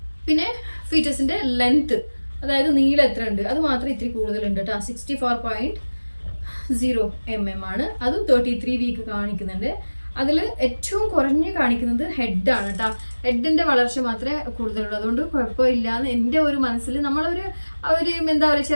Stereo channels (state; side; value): inverted; both; correlation -1.00